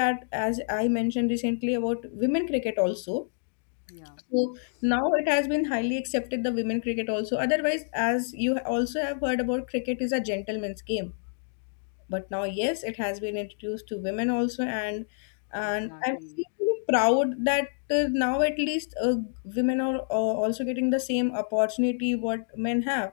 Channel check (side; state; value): right; silent; digital silence